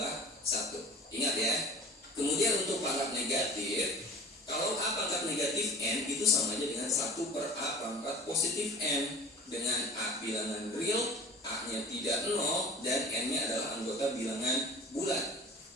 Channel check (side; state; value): both; normal; correlation 0.43